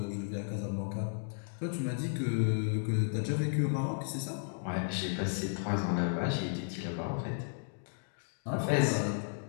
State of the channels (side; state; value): right; silent; digital silence